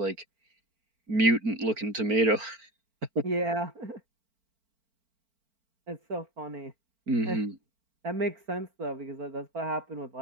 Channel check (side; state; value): left; late; 4.4 ms